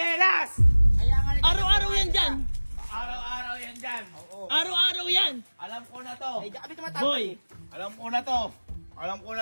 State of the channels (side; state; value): both; inverted; correlation -1.00